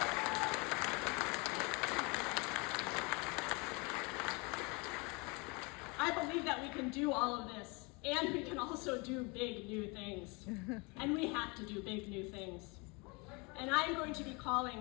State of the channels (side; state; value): right; quieter; 29.1 dB